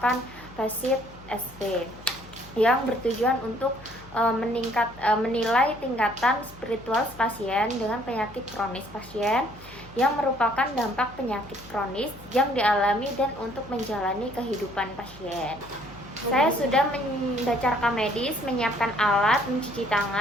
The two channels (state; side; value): noise; left; hum, 21 dB below the sound